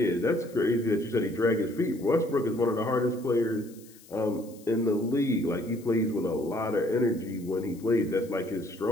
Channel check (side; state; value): left; noise; hiss, 24 dB below the sound